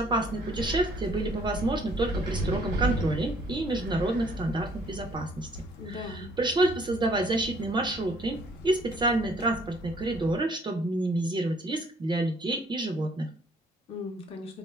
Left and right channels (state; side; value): normal; both; correlation 0.61